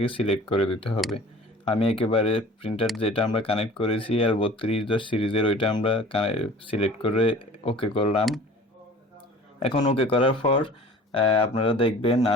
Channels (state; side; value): normal; both; correlation 0.45